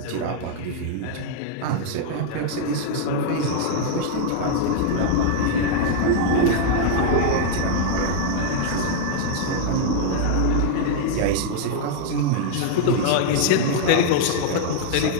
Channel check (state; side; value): different; both; correlation 0.00